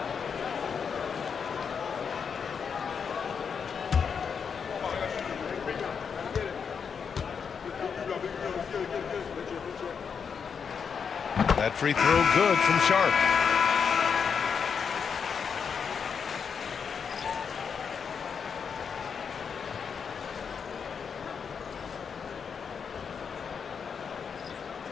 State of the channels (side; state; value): right; quieter; 6.5 dB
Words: That free throw good from Sharp.